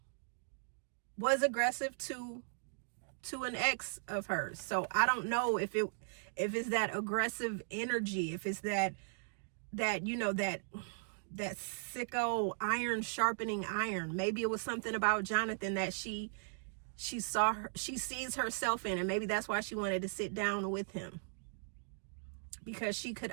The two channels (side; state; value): left; silent; digital silence